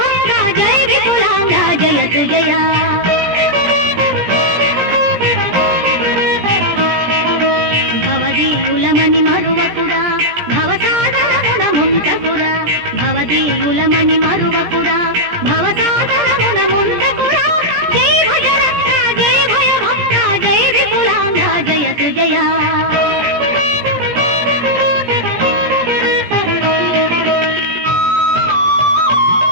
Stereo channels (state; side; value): late; left; 17 ms